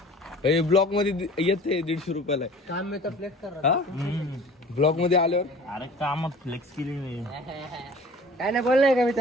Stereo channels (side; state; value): both; normal; correlation 0.45